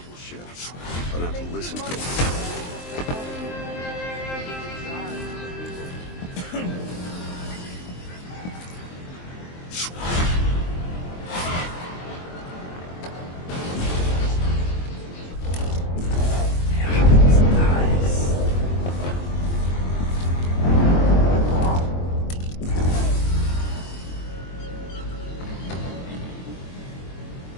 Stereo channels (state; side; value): late; right; 23 ms